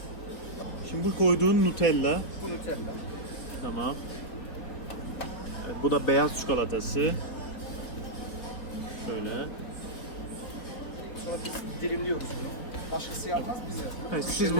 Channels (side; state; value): right; late; 3.8 ms